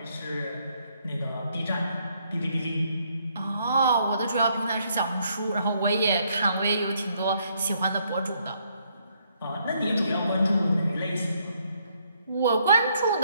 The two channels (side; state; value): both; inverted; correlation -0.71